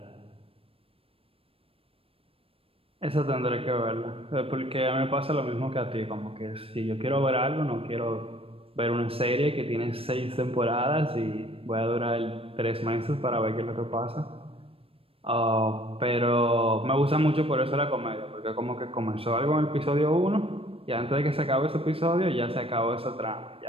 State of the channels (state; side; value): late; left; 0.28 ms